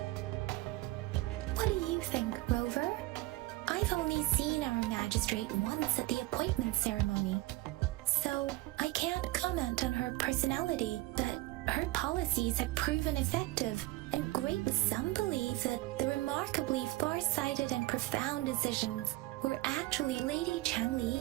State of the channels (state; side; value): quieter; left; 18.9 dB